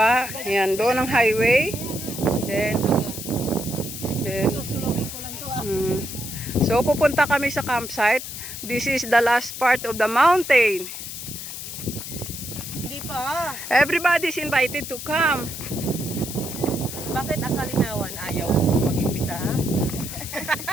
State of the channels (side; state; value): left; noise; hiss, 9 dB below the sound